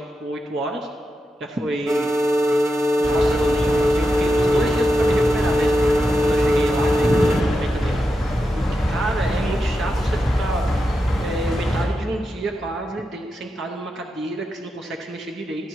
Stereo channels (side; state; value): both; normal; correlation 0.88